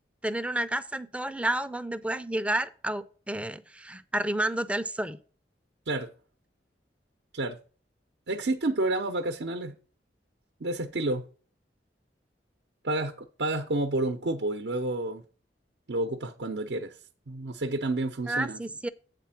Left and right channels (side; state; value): both; normal; correlation 0.42